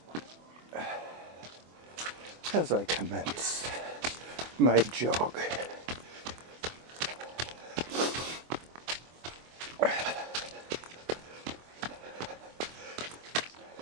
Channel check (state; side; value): late; left; 24 ms